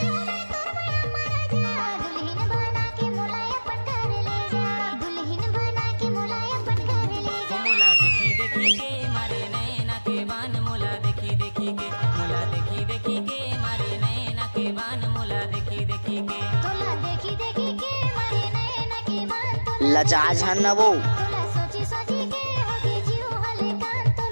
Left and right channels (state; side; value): inverted; both; correlation -1.00